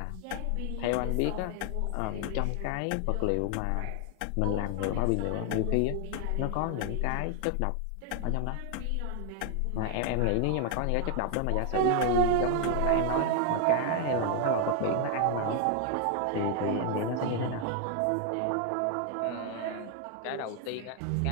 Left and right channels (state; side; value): different; both; correlation 0.00